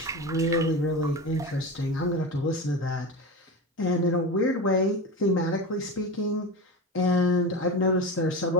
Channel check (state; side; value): normal; both; correlation 0.24